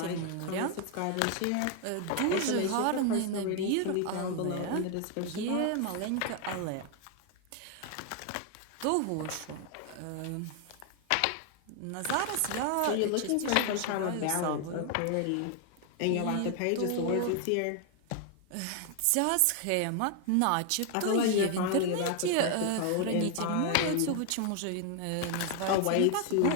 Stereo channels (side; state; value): both; different; correlation 0.00